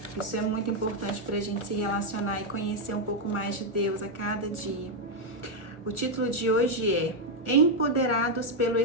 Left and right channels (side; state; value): right; late; 1.4 ms